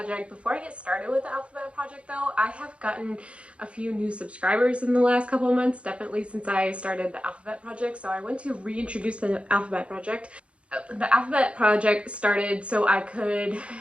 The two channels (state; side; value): late; left; 0.060 ms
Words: Before I get started with the alphabet project though, I have gotten a few new subscribers in the last couple of months, definitely since I started the alphabet project. So I want to reintroduce the alphabet project. The alphabet project started so I could